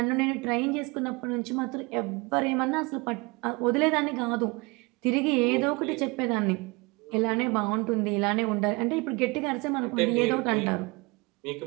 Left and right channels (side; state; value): left; quieter; 26.7 dB